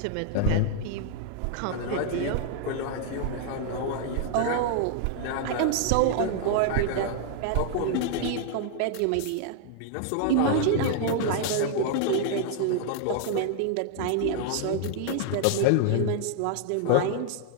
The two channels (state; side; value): different; both; correlation 0.00